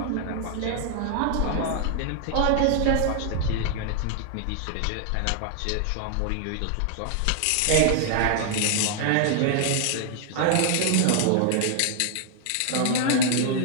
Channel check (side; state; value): both; different; correlation 0.00